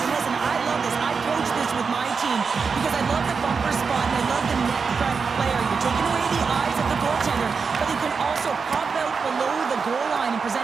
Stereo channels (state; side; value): quieter; left; 5.3 dB